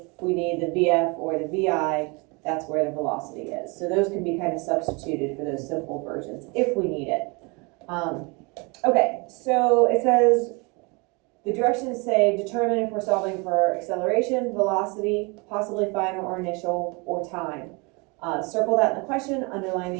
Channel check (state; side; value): quieter; left; 29.5 dB